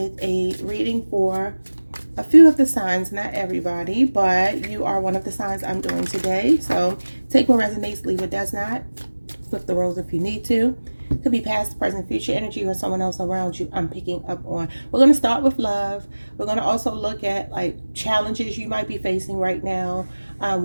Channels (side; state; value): both; inverted; correlation -1.00